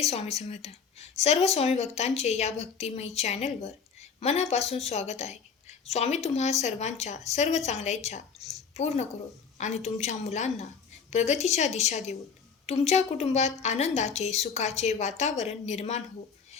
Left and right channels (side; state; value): right; quieter; 6.1 dB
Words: स्वामी समर्थ. सर्व स्वामी भक्तांचे या भक्तिमयी चॅनलवर मनापासून स्वागत आहे. स्वामी तुम्हा सर्वांच्या सर्व चांगल्या इच्छा पूर्ण करो आणि तुमच्या मुलांना प्रगतीच्या दिशा देऊन तुमच्या कुटुंबात आनंदाचे सुखाचे वातावरण निर्माण हो,